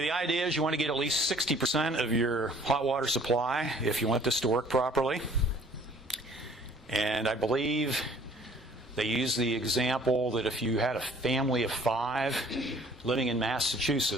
the idea is you want to get at least 60% of your hot water supply if you want this to work properly. And I believe they use the example that if you had a family of 5 living in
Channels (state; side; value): normal; both; correlation 0.55